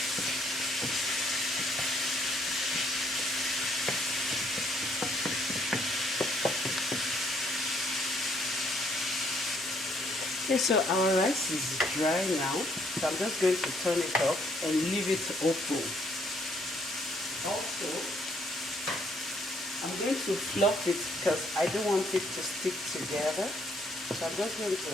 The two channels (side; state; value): both; normal; correlation 0.68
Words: Okay, so our rice is dry now, so I'm just going to turn it off and leave it open. Also, I'm going to fluff it because I don't want it to stick together. So I'm just going to